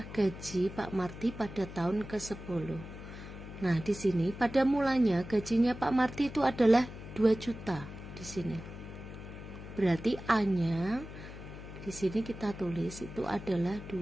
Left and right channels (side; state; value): left; noise; hum, 12 dB below the sound